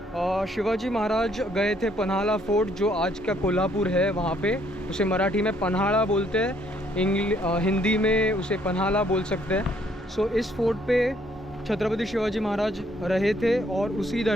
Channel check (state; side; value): normal; both; correlation 0.67